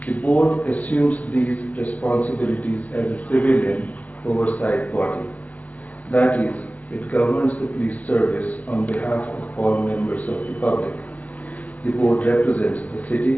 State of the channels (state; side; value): late; right; 0.076 ms